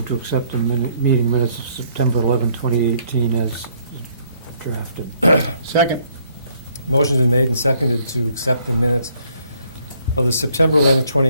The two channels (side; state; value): both; inverted; correlation -0.67